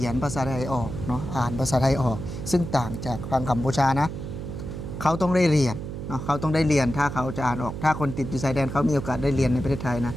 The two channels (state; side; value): noise; right; hum, 7 dB below the sound